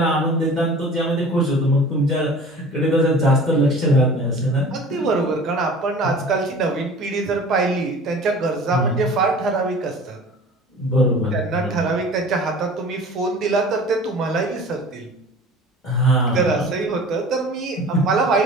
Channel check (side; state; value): both; normal; correlation 0.43